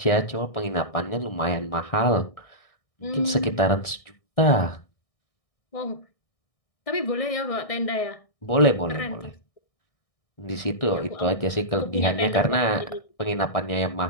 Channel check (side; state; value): right; late; 1.6 ms